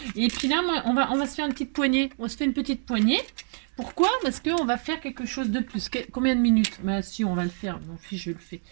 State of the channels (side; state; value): left; silent; 61 dB below the other